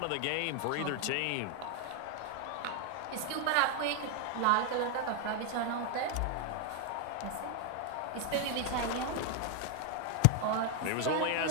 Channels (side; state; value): both; different; correlation 0.00